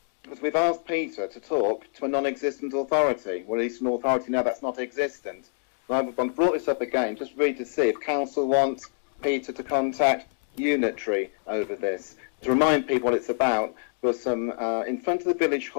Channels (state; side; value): silent; right; digital silence